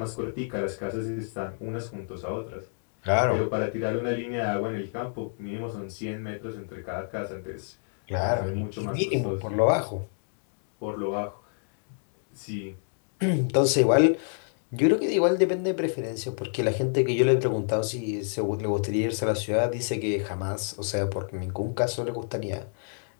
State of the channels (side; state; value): right; silent; digital silence